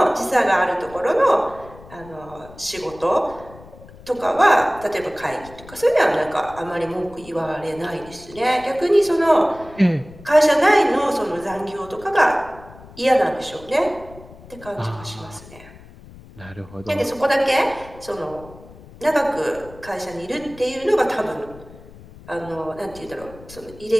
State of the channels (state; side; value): noise; left; rumble, 20 dB below the sound